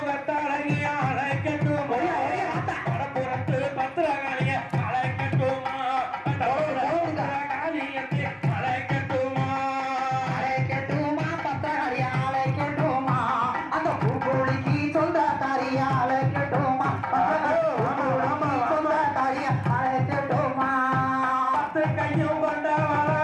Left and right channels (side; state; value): both; identical; correlation 1.00